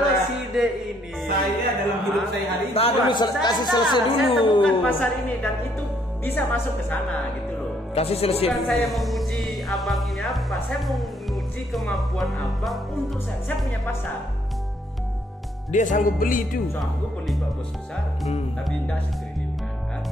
kita- si D ini Saya dalam hidup saya hari ini Nah, dulu Saya kasih tahu, selesai Saya dulu. temukan pasar ini dan itu bisa masuk ke sana gitu loh. Kasih selesai Bukan dulu. saya menguji abang ini apa, saya mau menguji kemampuan abang untuk saya. Saya punya pasar. Dia sanggup beli itu. Sanggup beli Pak Bos besar, tapi tidak setriliunan kan.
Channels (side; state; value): both; normal; correlation 0.69